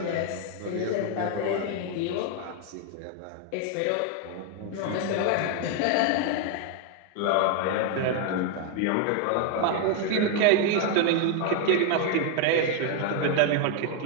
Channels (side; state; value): both; different; correlation 0.01